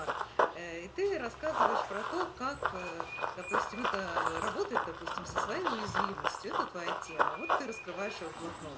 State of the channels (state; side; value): identical; both; correlation 1.00